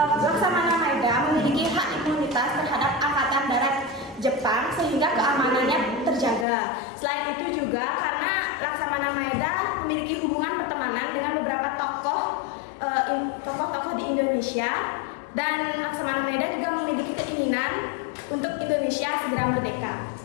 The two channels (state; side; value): drops out; right; at 6.5 s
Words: Laksamana Maeda memiliki hak imunitas terhadap Angkatan Darat Jepang sehingga keamanannya terjaga. Selain itu juga karena Laksamana Maeda memiliki hubungan pertemanan dengan beberapa tokoh-tokoh di Indonesia, dan Laksamana Maeda juga memiliki keinginan untuk Indonesia segera merdeka.